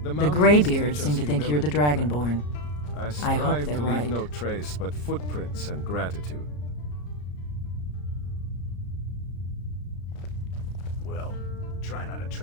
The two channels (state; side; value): late; right; 34 ms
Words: The Greybeards seem to think you're the Dragonborn. I hope they're to right. leave no trace but footprints and gratitude. Well, try not to